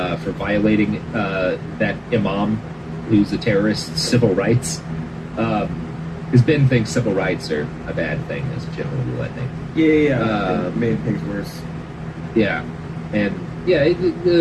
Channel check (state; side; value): identical; both; correlation 1.00